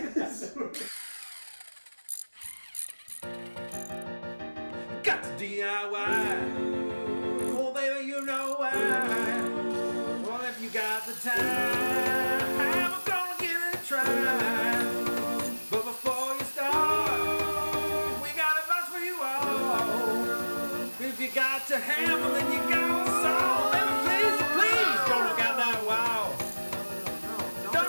to DIY. Oh, baby, you know why. Well, if you got the time, I'm gonna give it a try. But before you start, we got a bunch for you all. If you got to hammer, then you got to solve. Baby, please, don't knock out that wall. Don't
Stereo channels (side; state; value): both; inverted; correlation -1.00